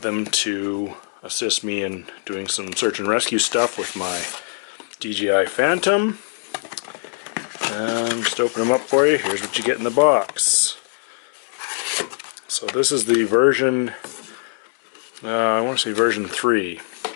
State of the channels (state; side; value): silent; right; 64 dB below the other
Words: them to assist me in doing some search and rescue stuff with my DJI Phantom. Just open them up for you. Here's what you get in the box. So this is the version, I want to say version 3.